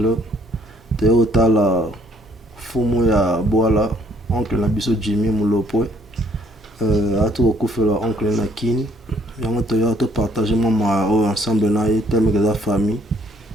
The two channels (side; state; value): both; normal; correlation 0.64